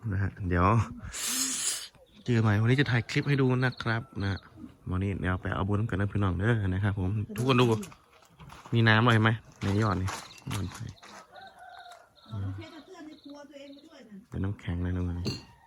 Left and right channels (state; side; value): identical; both; correlation 1.00